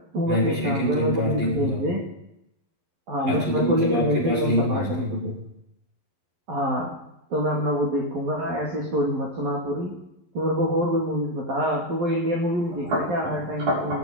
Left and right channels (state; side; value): late; left; 11 ms